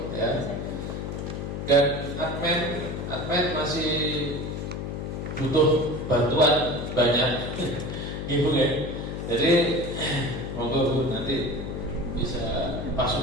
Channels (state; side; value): noise; left; hum, 5 dB below the sound